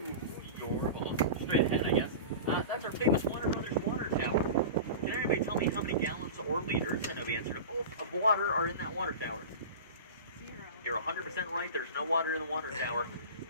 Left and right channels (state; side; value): inverted; both; correlation -0.31